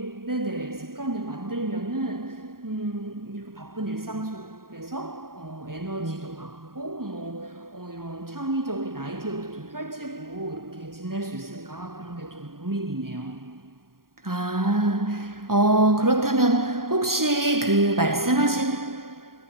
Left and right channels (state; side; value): late; left; 0.92 ms